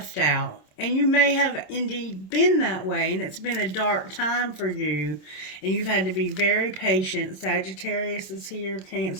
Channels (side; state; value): right; late; 26 ms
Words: out, and you may have indeed been that way, and it's been a dark time for you, and you've had to be very patient. Sagittarius is here,